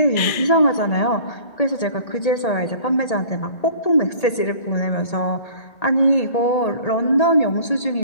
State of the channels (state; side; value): late; right; 1.8 ms